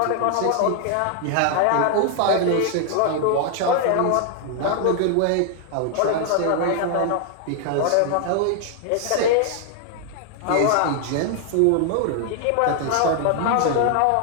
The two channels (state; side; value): different; both; correlation 0.00